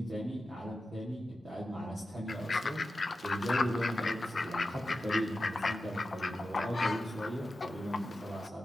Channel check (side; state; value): both; normal; correlation 0.92